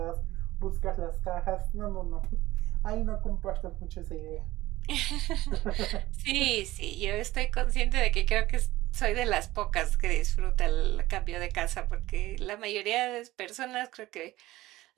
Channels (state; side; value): quieter; left; 17.1 dB